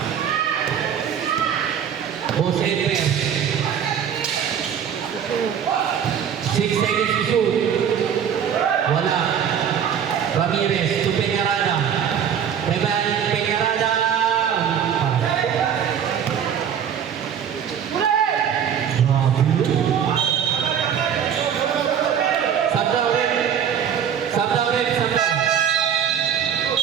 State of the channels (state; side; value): quieter; left; 8.4 dB